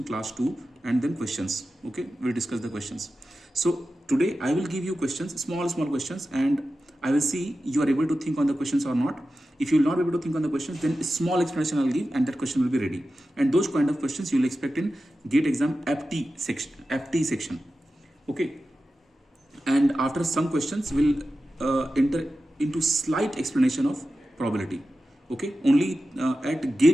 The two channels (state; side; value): normal; both; correlation 0.93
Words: class 2 and then questions. Okay, we'll discuss the questions. So today I will give you questions, small questions, and I will see you are able to think on the questions or not. If you will not be able to think on the questions, then a small explanation I'll give and that question will be ready. And those kind of questions you will expect in GATE exam FT section. Okay, and after some questions we'll enter into slight explanation of probability. Okay, only at